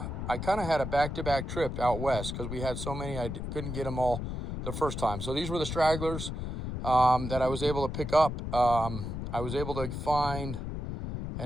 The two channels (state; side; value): noise; left; rumble, 5 dB below the sound